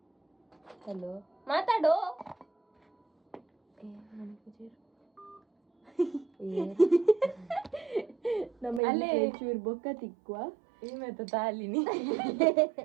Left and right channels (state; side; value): drops out; left; at 8.8 s